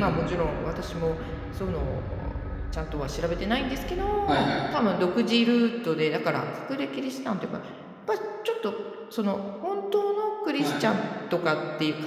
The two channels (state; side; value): identical; both; correlation 1.00